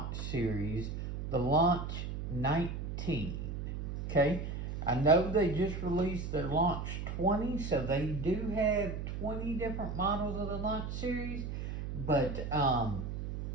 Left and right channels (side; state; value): right; noise; hum, 5 dB below the sound